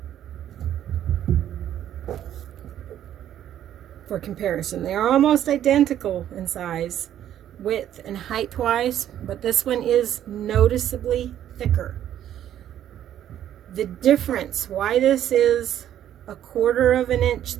For comparison, they are almost identical in size, width and height wise, but this one is noticeably thicker. The difference, why this is 1/4 of an inch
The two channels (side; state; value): left; quieter; 11.1 dB